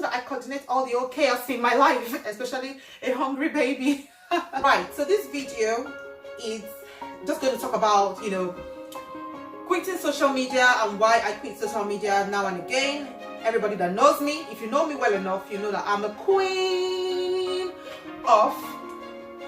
that I coordinate all the old chaos in my life, especially a hungry baby? Right, so this video is just going to talk about, you know, quitting social media and why I quit social media now and again. Everybody that knows me, if you know me well enough, you know that I'm a queen of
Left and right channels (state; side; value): identical; both; correlation 1.00